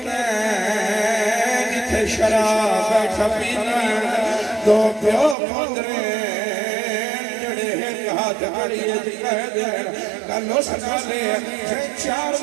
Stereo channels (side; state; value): left; drops out; at 5.4 s